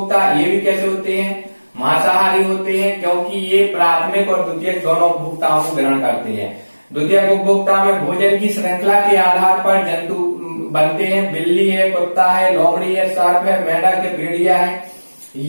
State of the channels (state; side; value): inverted; both; correlation -1.00